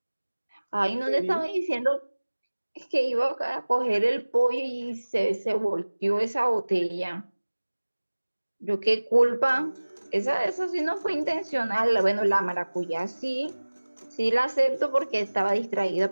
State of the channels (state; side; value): inverted; both; correlation -1.00